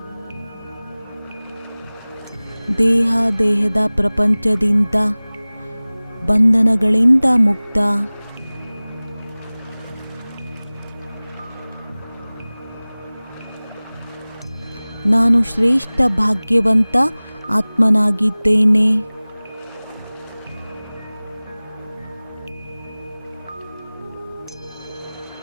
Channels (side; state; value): both; inverted; correlation -0.99